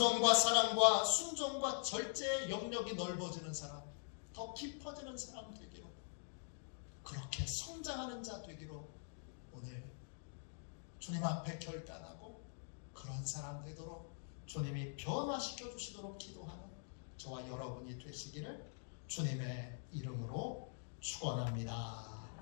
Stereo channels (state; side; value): silent; right; digital silence